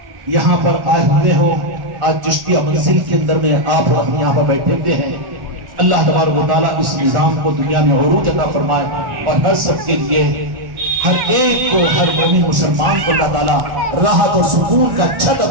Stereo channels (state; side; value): late; left; 1.4 ms